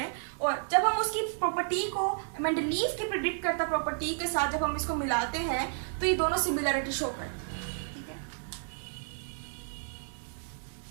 और जब हम उसकी प्रॉपर्टी को मेंडलीव की प्रिडिक्ट करता प्रॉपर्टी के साथ जब हम इसको मिलाते हैं तो ये दोनों सिमिलरिटी शो करते हैं। ठीक है,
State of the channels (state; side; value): silent; left; digital silence